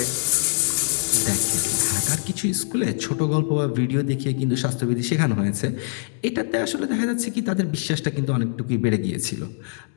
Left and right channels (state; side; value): silent; right; 63 dB below the other